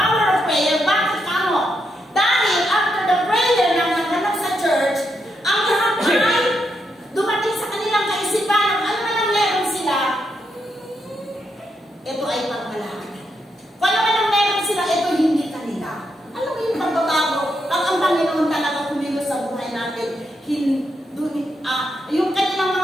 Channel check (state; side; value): normal; both; correlation 0.81